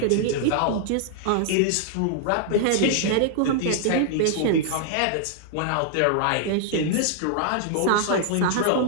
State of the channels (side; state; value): both; different; correlation -0.01